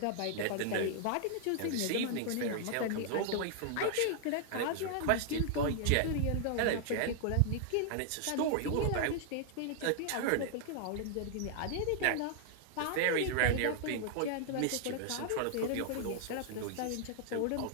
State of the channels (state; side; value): different; both; correlation 0.00